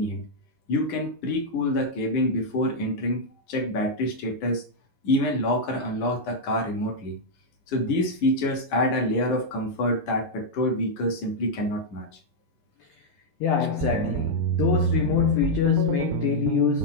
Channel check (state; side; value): late; right; 10 ms